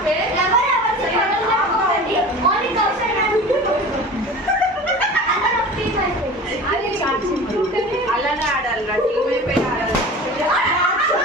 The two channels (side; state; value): both; normal; correlation 0.36